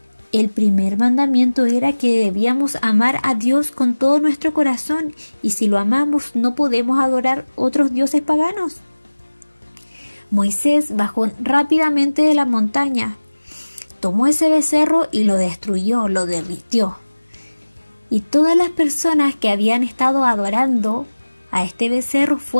el primer mandamiento era que debíamos amar a Dios con todo nuestro corazón, y si lo amamos no podemos adorar otros dioses paganos. Moisés bajó rápidamente de la montaña, tomó ese becerro y lo destruyó, lo derritió. Y todas las personas que habían estado adorando a este becerro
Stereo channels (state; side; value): inverted; both; correlation -1.00